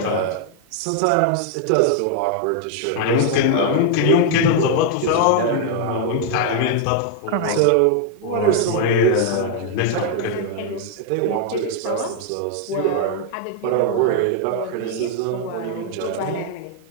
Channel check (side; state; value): both; different; correlation 0.00